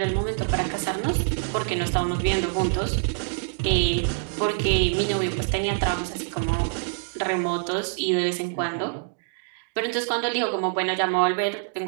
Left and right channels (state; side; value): silent; left; digital silence